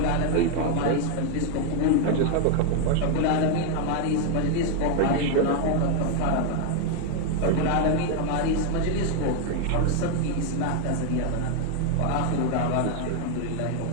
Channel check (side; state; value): both; different; correlation 0.00